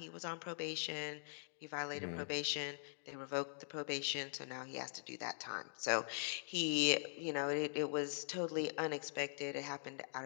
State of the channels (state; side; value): silent; right; digital silence